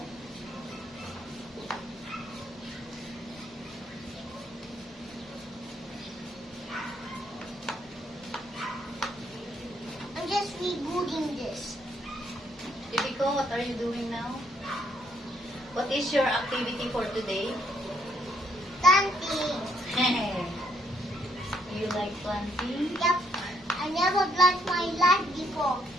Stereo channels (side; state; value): both; normal; correlation 0.71